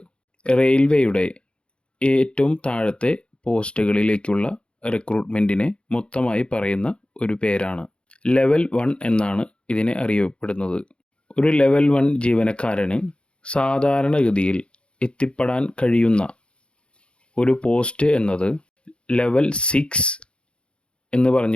റെയിൽവേയുടെ ഏറ്റവും താഴത്തെ പോസ്റ്റുകളിലേക്കുള്ള റിക്രൂട്ട്മെൻറ്റിനെ മൊത്തമായി പറയുന്ന ഒരു പേരാണ്. ലെവൽ 1 എന്നാണ് ഇതിനെ അറിയപ്പെടുന്നത്. ഒരു ലെവൽ 1 ജീവനക്കാരന് സാധാരണഗതിയിൽ എത്തിപ്പെടാൻ കഴിയുന്ന ഒരു പോസ്റ്റ് എന്നത് ലെവൽ 6 എന്ന്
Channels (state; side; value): late; right; 0.056 ms